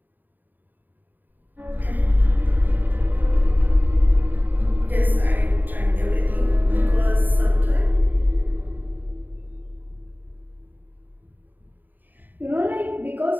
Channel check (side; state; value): left; late; 0.088 ms